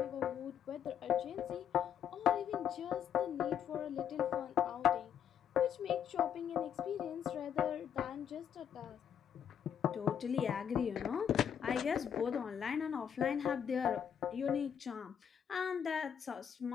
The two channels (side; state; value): right; quieter; 8.6 dB